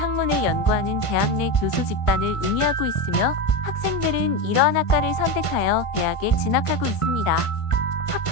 연구하는 대학 내 교수 집단을 의미하고 있으며 학생들은 이러한 학과를 선택하여 대학에 진학하고 있습니다.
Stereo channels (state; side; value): late; right; 1.5 ms